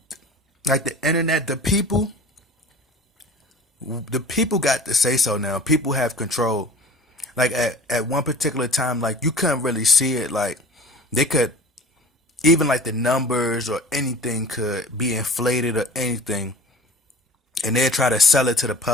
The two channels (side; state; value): both; normal; correlation 0.43